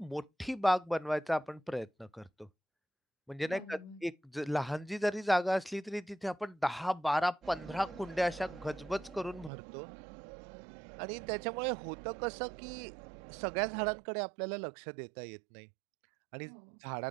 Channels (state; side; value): drops out; left; at 9.5 s